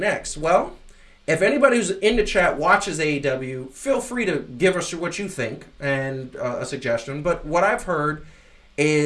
Well, if anybody who's in the chat watches AEW, feel free to give us what you think and a suggestion. But what I've heard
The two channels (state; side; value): identical; both; correlation 1.00